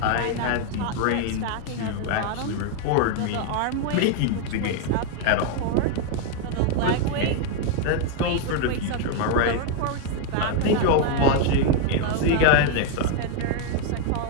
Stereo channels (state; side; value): different; both; correlation 0.00